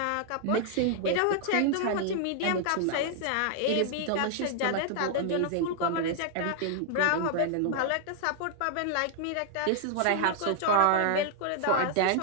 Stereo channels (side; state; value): both; different; correlation 0.00